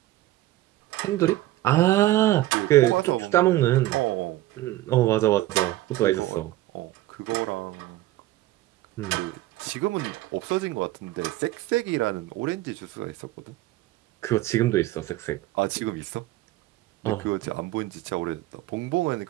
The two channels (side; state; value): left; quieter; 16.3 dB